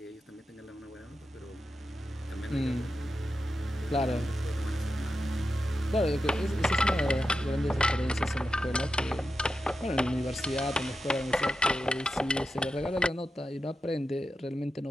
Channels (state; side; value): normal; both; correlation 0.90